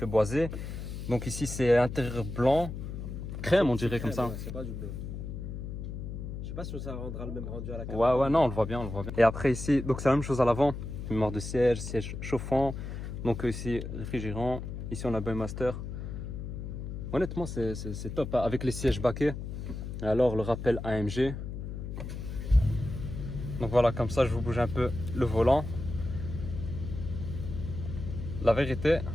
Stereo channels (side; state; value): left; noise; hum, 7 dB below the sound